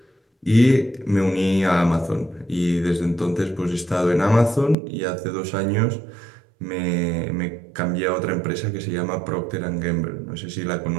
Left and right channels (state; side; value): drops out; left; at 4.8 s